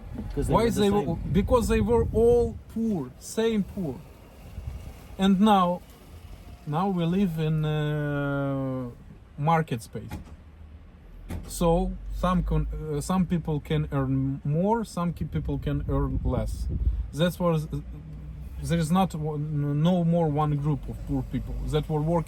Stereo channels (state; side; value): identical; both; correlation 1.00